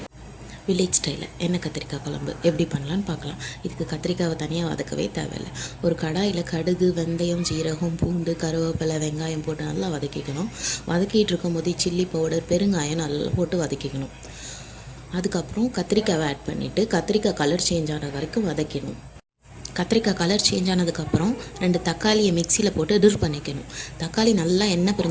வில்லேஜ் ஸ்டைலில் எண்ணெய் கத்திரிக்காய் குழம்பு எப்படி பண்ணலான்னு பார்க்கலாம். இதுக்கு கத்திரிக்காவை தனியாக வதக்கவே தேவையில்லை. ஒரு கடாயில் கடுகு, வெந்தயம், ஜீரகம், பூண்டு, கருவேப்பிலை, வெங்காயம் போட்டு நல்லா வதக்கிக்கணும். வதக்கிட்டு இருக்கும்போது சில்லி பவுடர், பெருங்காயம் நல்லா போட்டு வதக்கிக்கணும். அதுக்கப்புறம் கத்திரிக்காவை ஆட் பண்ணிவிட்டு கத்திரிக்காய் கலர் சேஞ்ச் ஆன வரைக்கும் வதக்கணும். கத்திரிக்காய் கலர் சேஞ்ச் ஆனதுக்கப்புறம் 2 தக்காளியை மிக்சியில் போட்டு டிர் பண்ணிக்கணும். தக்காளி நல்லா எண்ணெய்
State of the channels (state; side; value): identical; both; correlation 1.00